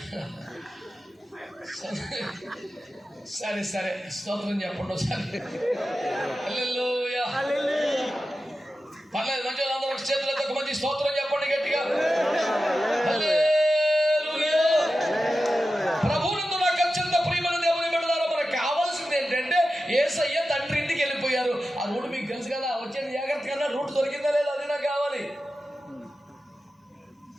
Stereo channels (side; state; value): both; normal; correlation 0.92